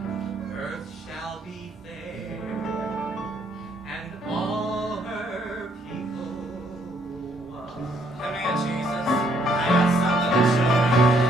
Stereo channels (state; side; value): normal; both; correlation 0.69